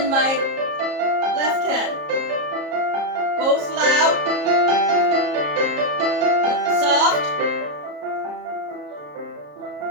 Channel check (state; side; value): late; left; 34 ms